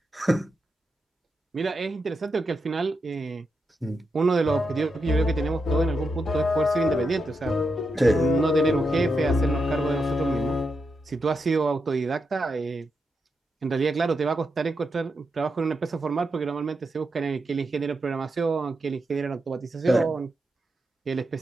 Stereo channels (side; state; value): both; normal; correlation 0.85